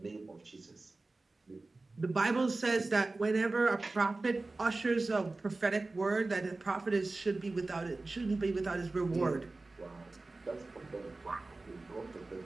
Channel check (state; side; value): quieter; left; 3.3 dB